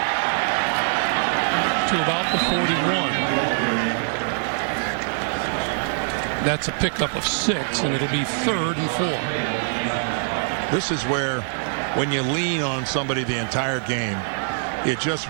to about the 41. That's a pickup of 6, and it'll be 3rd and 4. This is where, when you lean on somebody the entire game, it just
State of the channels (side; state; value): left; silent; digital silence